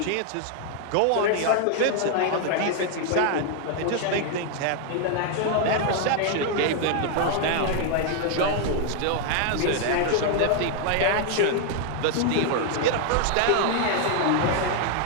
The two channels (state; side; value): different; both; correlation 0.00